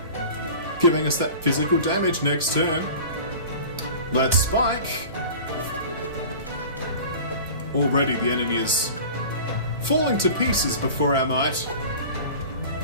Giving us that physical damage next turn. Let's spike. Already the enemy is falling to pieces before our might.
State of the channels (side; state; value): both; inverted; correlation -0.39